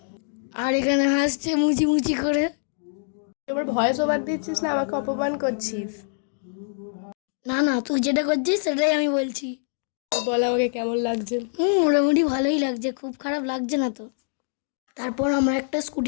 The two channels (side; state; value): right; silent; digital silence